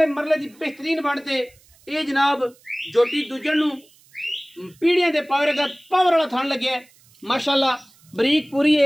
मरले दी बेहतरीन बनते ये जनाब जोटी दुजण नूं पीढ़ियां दे पावर का पावर वाला थान लगे माशाअल्लाह बरीक पूरी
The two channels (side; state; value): right; noise; hiss, 29 dB below the sound